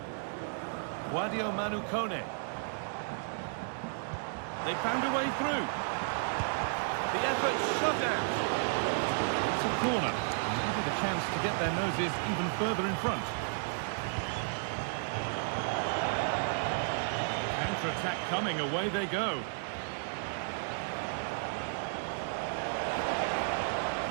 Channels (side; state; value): left; silent; digital silence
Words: Guadio Manu Kone. They found a way through. The effort shut out. It's a corner. Maybe the chance to get their noses even further in front. Counter-attack coming, away they go.